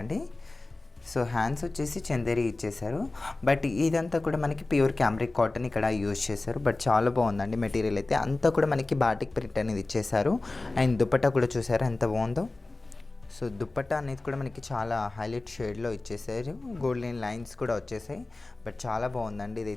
అండి. సో హ్యాండ్స్ వచ్చేసి చందేరి ఇచ్చేసారు, బట్ ఇదంతా కూడా మనకి ప్యూర్ క్యామ్రిక్ కాటన్ ఇక్కడ యూజ్ చేశారు. బట్ చాలా బాగుందండి మెటీరియల్ అయితే. అంతా కూడా మనకి బాటిక్ ప్రింట్ అనేది ఇచ్చేసారు. అండ్ దుపట్టా కూడా చూసారు ఎంత బాగుందో. సో దుపట్టా అనేది కూడా మనకి చాలా హైలైట్ షేడ్లో ఇచ్చేసారు. గోల్డెన్ లైన్స్ కూడా వచ్చేసాయి. బట్ చాలా బాగుందండి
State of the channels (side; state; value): right; quieter; 3.1 dB